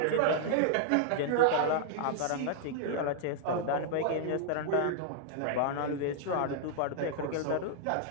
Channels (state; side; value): different; both; correlation -0.01